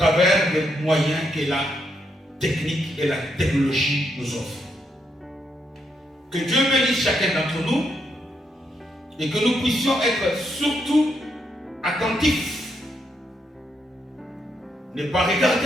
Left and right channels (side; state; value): both; normal; correlation 0.79